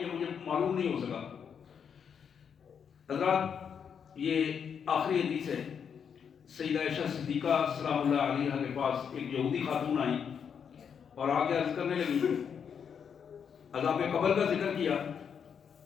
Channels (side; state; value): right; quieter; 7.3 dB